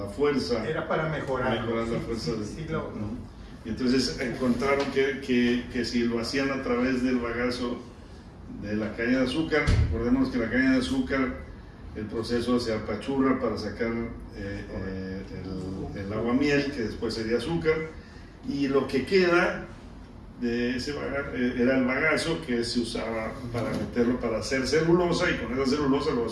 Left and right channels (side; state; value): both; identical; correlation 1.00